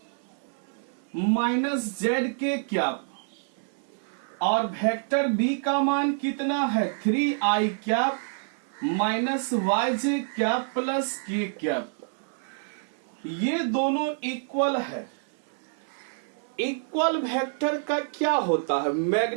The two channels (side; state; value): left; silent; 60 dB below the other